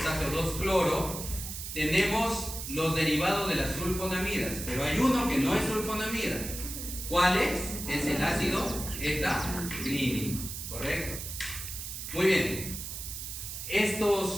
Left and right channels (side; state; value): right; noise; hiss, 7 dB below the sound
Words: 2 cloro, tenemos los derivados de las sulfonamidas, pero hay uno que no es sulfonamida. ¿Cuál es? Es el ácido etacrínico, ¿correcto? Muy bien.